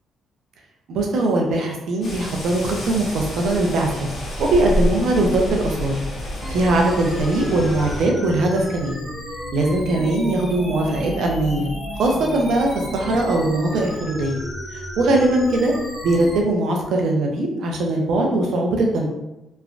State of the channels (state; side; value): normal; both; correlation 0.70